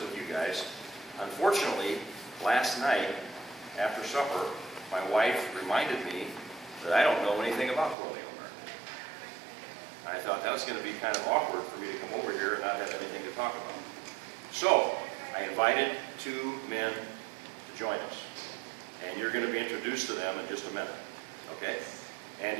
with you guys. Unfortunately, last night, after supper, my wife reminded me that I don't know anything about colonial America. I thought that was going to be kind of awkward for me to come over here and not have anything to talk about. So, I invited two men to join us. And you're going to be introduced to them in just a minute. Okay? And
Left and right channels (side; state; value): left; drops out; at 8.0 s